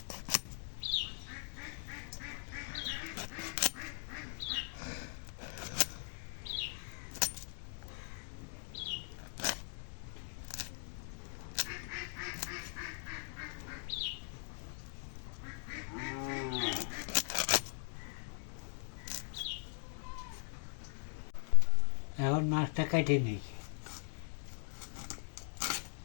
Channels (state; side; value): silent; right; digital silence